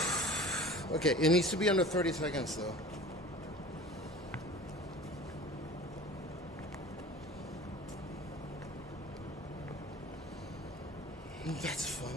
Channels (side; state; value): both; normal; correlation 0.41